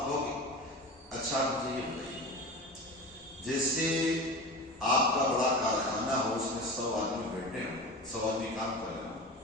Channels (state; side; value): normal; both; correlation 0.30